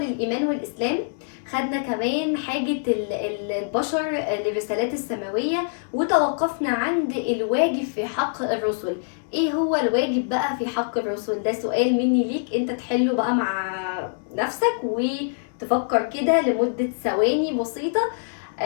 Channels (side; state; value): right; silent; digital silence